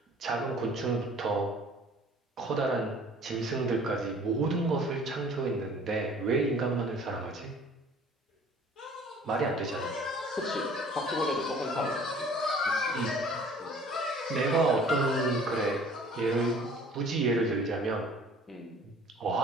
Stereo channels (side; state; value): both; normal; correlation 0.51